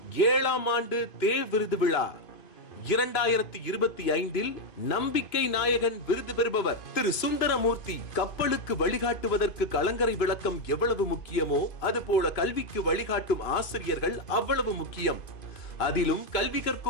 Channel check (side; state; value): right; late; 3.0 ms